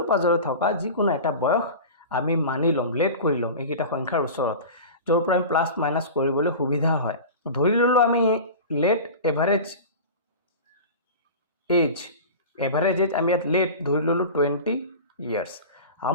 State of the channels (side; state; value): both; inverted; correlation -0.33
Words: পাজৰে থকা যিকোনো এটা বয়স আমি মানি লম, লেট কৰি লম এইকেইটা সংখ্যাৰ ওচৰত, য'ৰ পৰা আমি প্লাছ মাইনাছ কৰিবলৈ সুবিধা হয়। ধৰি ললো আমি लेट एवरेज एज हम यहाँ लेट धर लो 20 ईयर्स।